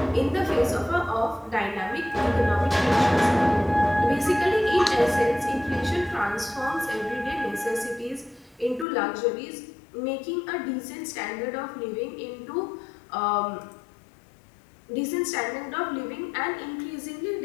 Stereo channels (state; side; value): drops out; right; at 8.8 s